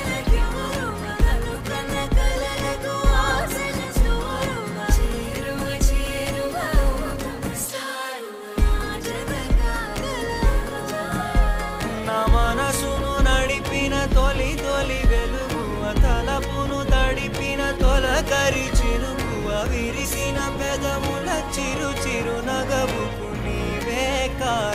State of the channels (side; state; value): both; identical; correlation 1.00